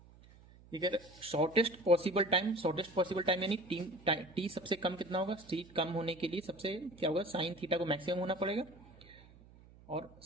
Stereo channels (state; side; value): noise; right; hum, 23 dB below the sound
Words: shortest possible time यानी टी सबसे कम कितना होगा, टी कम होने के लिए सबसे क्या होगा, साइन थीटा को मैक्सिमम होना पड़ेगा और